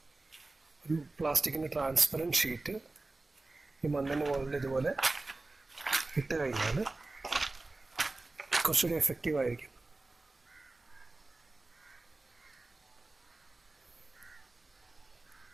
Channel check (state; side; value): quieter; left; 3.2 dB